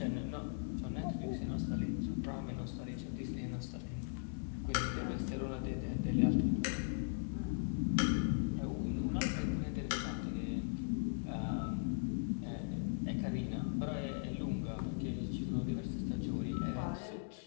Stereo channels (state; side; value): silent; right; 52 dB below the other